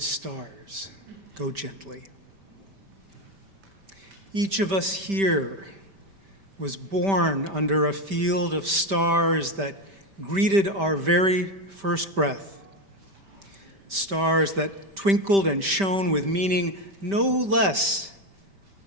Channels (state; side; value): late; left; 5.1 ms